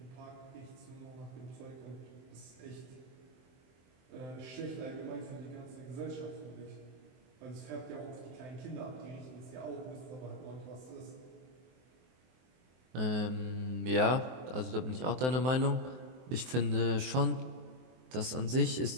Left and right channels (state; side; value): late; left; 23 ms